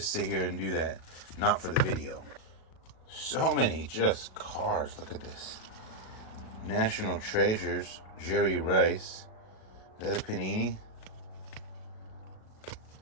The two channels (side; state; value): right; late; 37 ms